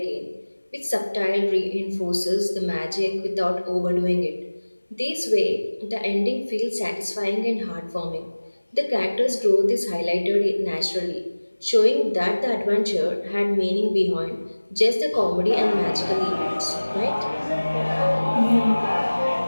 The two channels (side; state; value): both; inverted; correlation -1.00